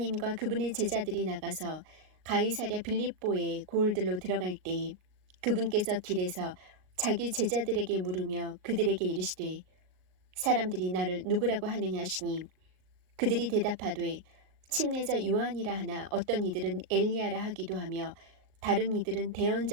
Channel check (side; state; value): left; late; 38 ms